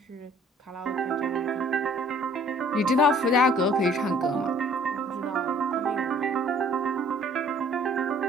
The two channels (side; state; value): both; normal; correlation 0.56